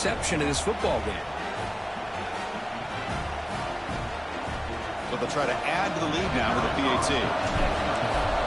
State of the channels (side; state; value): both; identical; correlation 1.00